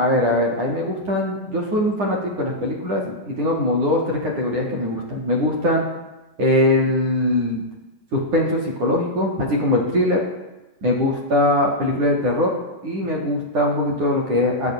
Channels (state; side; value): late; left; 9.9 ms